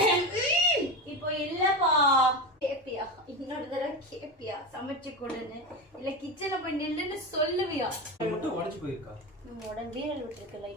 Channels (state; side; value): normal; both; correlation 0.20